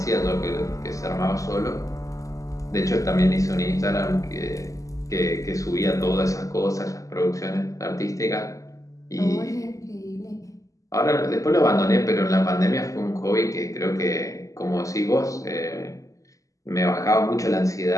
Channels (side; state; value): right; late; 0.16 ms